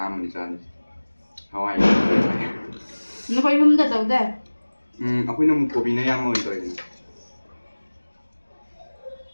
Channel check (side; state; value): both; inverted; correlation -1.00